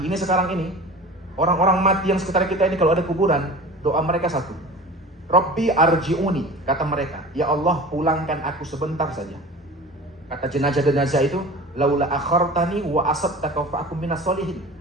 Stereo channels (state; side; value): normal; both; correlation 0.38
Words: sekarang ini, orang-orang mati yang sekitar kita ini kalau ada kuburan, doa mereka satu. Rabbi arji'uni, kata mereka, ya Allah pulangkan aku sebentar saja. Kata jenazah-jenazah itu, laula akhartani wa asabtaka fa akum minas solihin.